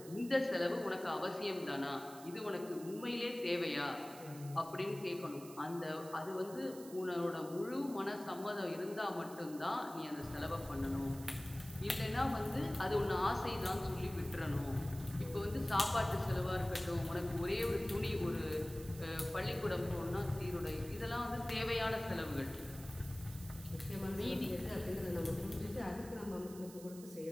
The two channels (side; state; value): right; noise; hiss, 17 dB below the sound